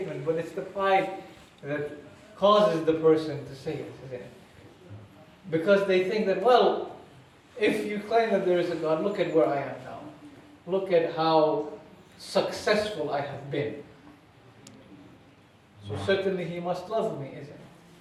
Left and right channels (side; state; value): both; identical; correlation 1.00